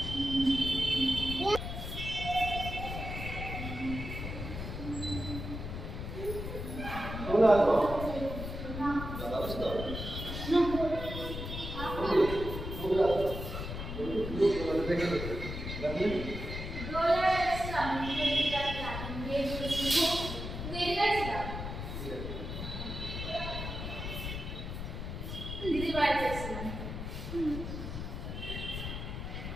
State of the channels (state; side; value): noise; left; rumble, 6 dB below the sound